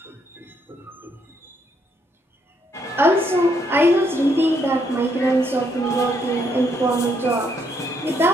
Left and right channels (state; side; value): normal; both; correlation 0.73